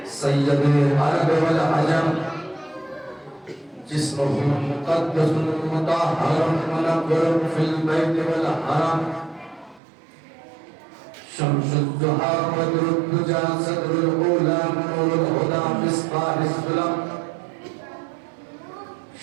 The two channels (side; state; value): left; drops out; at 9.8 s